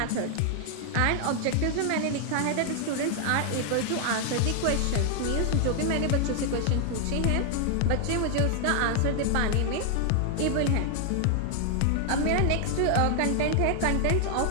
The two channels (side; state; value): both; different; correlation 0.00